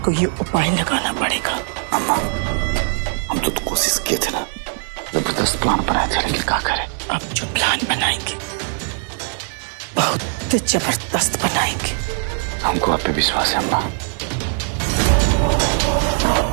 कोई उपाय लगाना पड़ेगा। अम्मा, हम तो कोशिश किए थे ना, जबरदस्त प्लान बनाए थे, लेकिन क्या करें? अब जो प्लान बनाएंगे बहुत जबरदस्त बनाएंगे। हमको आप पे विश्वास है अम्मा।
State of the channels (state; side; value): silent; left; 66 dB below the other